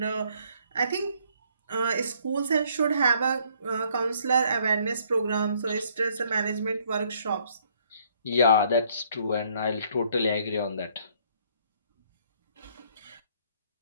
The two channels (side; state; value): both; inverted; correlation -0.65